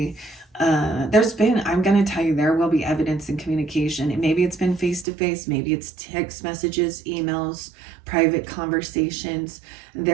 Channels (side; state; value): left; drops out; at 5.1 s